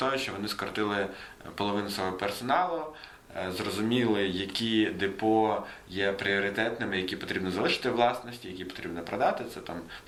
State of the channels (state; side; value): identical; both; correlation 1.00